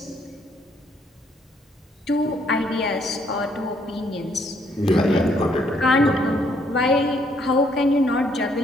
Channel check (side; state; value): both; normal; correlation 0.69